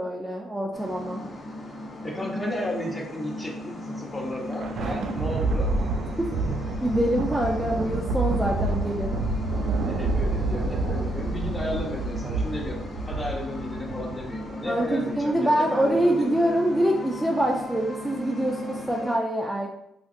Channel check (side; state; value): both; normal; correlation 0.79